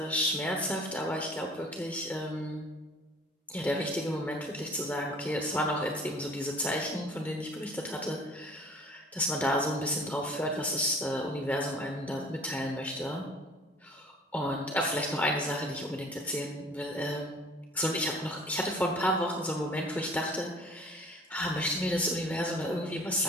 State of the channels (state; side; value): normal; both; correlation 0.49